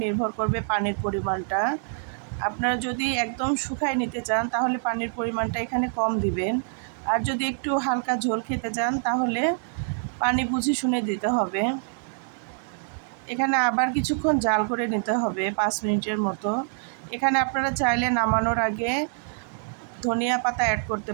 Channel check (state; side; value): silent; left; 60 dB below the other